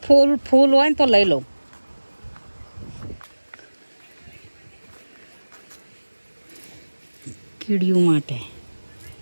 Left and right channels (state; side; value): inverted; both; correlation -1.00